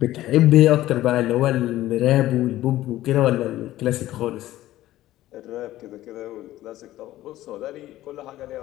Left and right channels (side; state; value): right; quieter; 15.0 dB